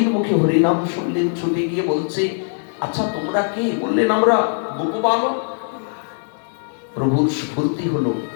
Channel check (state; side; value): silent; right; digital silence